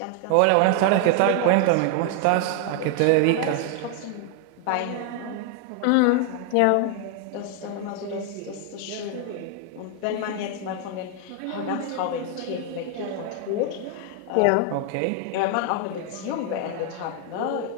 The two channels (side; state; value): both; different; correlation 0.00